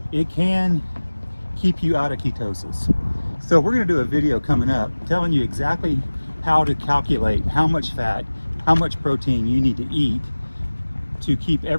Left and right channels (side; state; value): both; inverted; correlation -1.00